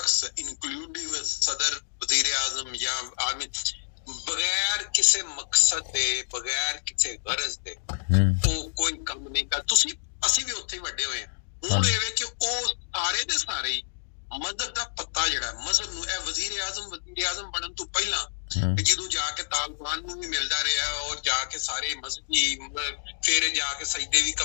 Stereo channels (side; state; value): right; silent; digital silence